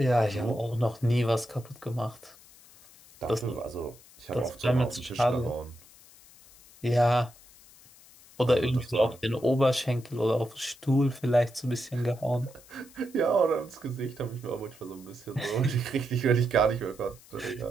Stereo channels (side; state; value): left; noise; hiss, 24 dB below the sound